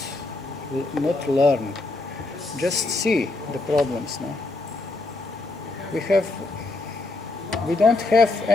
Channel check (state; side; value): quieter; right; 3.1 dB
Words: not learn, just see the problems. No? We don't have